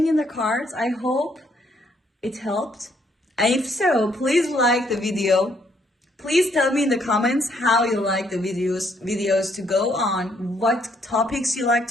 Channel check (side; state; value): both; normal; correlation 0.70